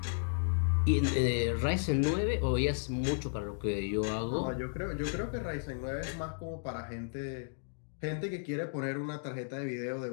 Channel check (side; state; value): right; silent; digital silence